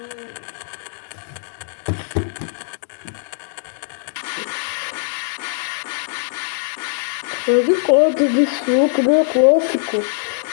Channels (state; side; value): silent; right; digital silence